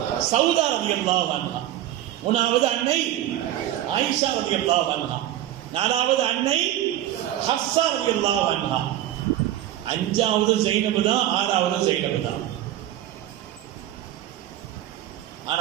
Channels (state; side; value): quieter; left; 13.2 dB